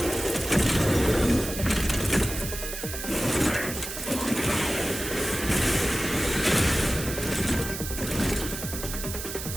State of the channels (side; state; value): right; noise; hiss, 7 dB below the sound